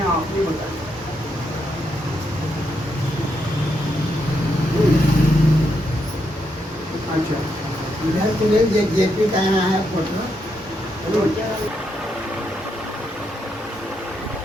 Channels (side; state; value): both; normal; correlation 0.80